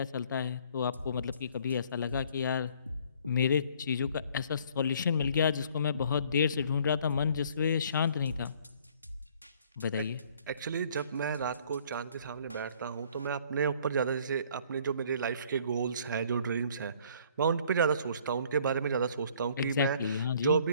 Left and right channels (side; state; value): both; inverted; correlation -0.59